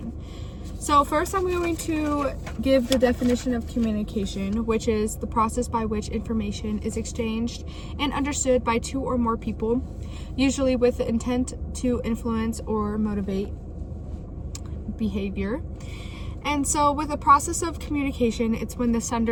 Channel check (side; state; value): both; identical; correlation 1.00